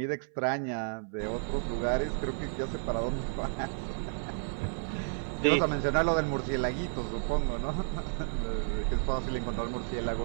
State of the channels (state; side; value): silent; left; 57 dB below the other